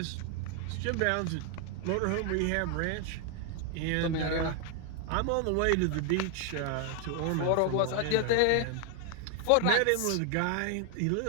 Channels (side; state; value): both; different; correlation 0.00